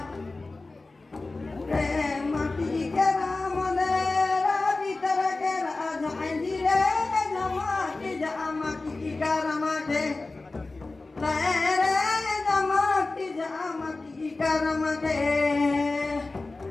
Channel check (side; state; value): right; quieter; 3.4 dB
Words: रे माटी के राम देरा भीतर के राजा जी रे जमाती जमाती करमते रे जमाती जमाती करमते